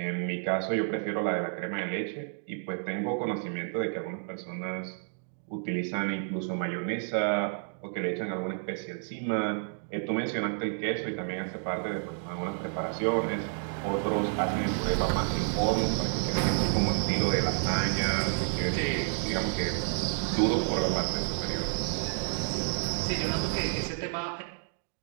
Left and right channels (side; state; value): left; silent; digital silence